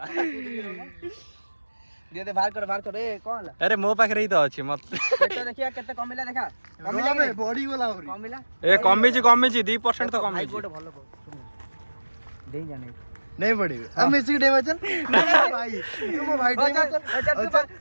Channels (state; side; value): inverted; both; correlation -1.00